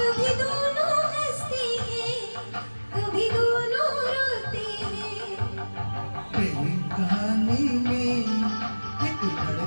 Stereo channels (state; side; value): inverted; both; correlation -1.00